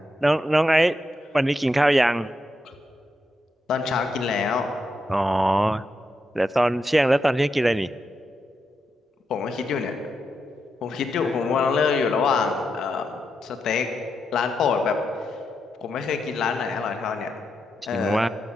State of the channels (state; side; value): normal; both; correlation 0.84